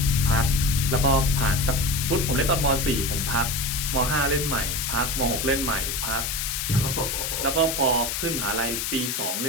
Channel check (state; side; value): noise; left; hiss, 2 dB below the sound